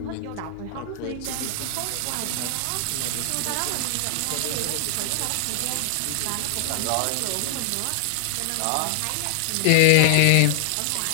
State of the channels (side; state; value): both; different; correlation 0.00